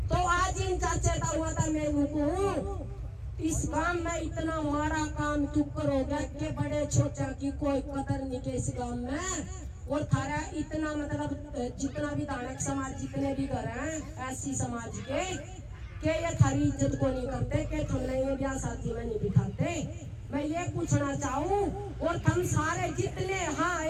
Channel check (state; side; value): identical; both; correlation 1.00